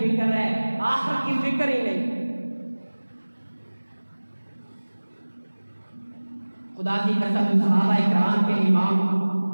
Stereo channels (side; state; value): both; inverted; correlation -1.00